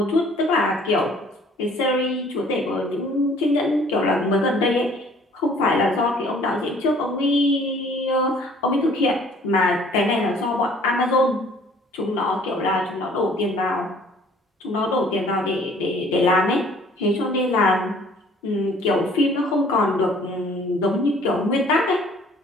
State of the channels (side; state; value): both; normal; correlation 0.55